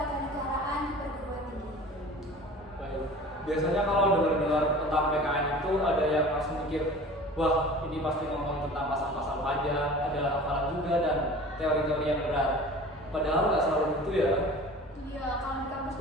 di perguruan tinggi. Baik. Biasanya kalau dengar-dengar tentang PKN itu ada yang langsung mikir, wah ini pasti ngomong tentang pasal-pasal pajak, ada hafalan juga dan teori-teori yang berat. Padahal nggak selalu gitu ya. Iya, kalau di kampus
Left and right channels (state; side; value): normal; both; correlation 0.41